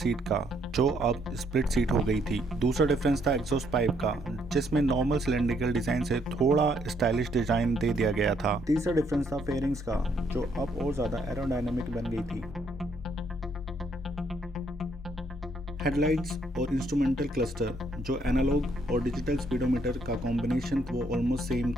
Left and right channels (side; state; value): both; normal; correlation 0.70